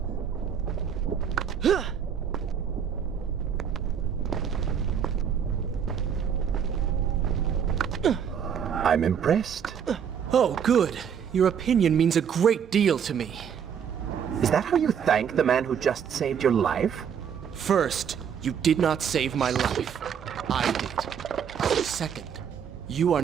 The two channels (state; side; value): quieter; left; 7.8 dB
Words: I'm impressed. Oh, good. Your opinion means a great deal to me. Is that how you thank the man who just saved your life? First, you did not save my life. I did. Second, you are